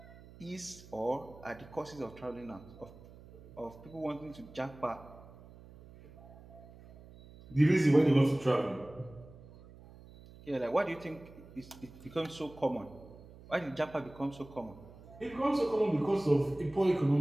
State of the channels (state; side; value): noise; right; hum, 20 dB below the sound